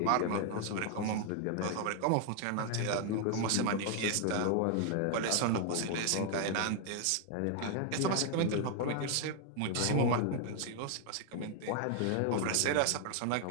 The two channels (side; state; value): both; different; correlation 0.00